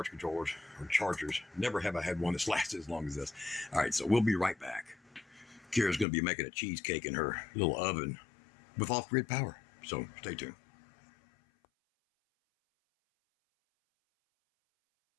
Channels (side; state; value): right; drops out; at 6.1 s